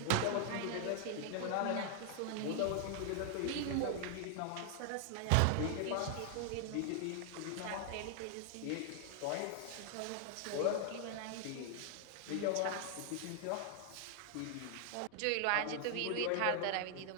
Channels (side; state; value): both; different; correlation 0.00